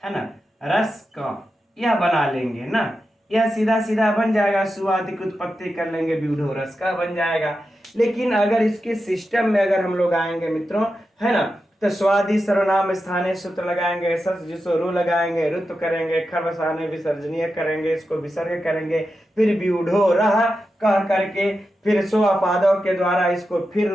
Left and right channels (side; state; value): both; normal; correlation 0.90